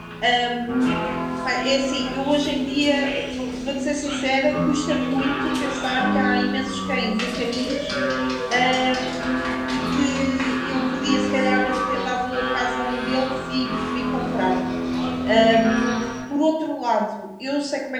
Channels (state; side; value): identical; both; correlation 1.00